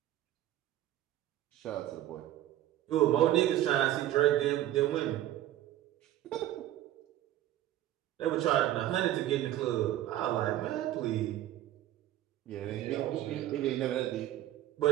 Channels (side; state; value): left; quieter; 13.5 dB